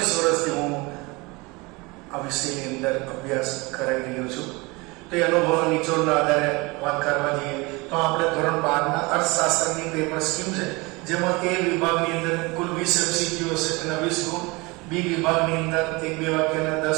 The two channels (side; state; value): left; quieter; 25.2 dB